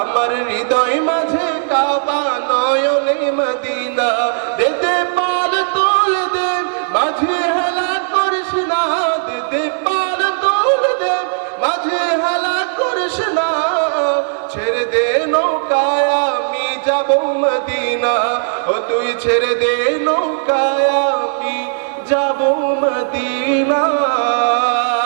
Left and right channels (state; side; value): silent; left; digital silence